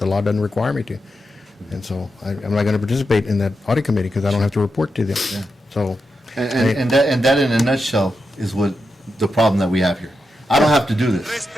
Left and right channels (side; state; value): both; normal; correlation 0.87